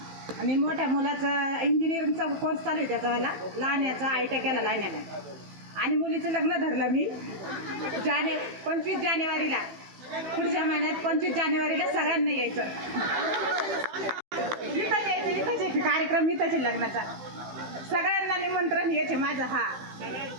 आणि मोठ्या मुलाचा इंजिनिअरिंगचा कोर्स चालू आहे त्याचावाला. लहान्याचा ITI केला लहान्याने. आणि मुलीचं लग्न धरलं मी 25 जानेवारीला. पुढच्या महिन्यात 25 जानेवारीला सगळ्यांना यायचं. इथंच यायचं. इथंच कार्यक्रम इथंच लग्नाचा. सगळ्यांना निमंत्रण यायचे माझं. हा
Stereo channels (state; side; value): late; left; 15 ms